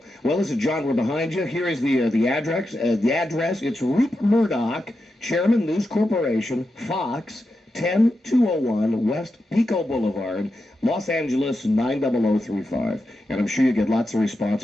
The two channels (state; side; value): normal; both; correlation 0.88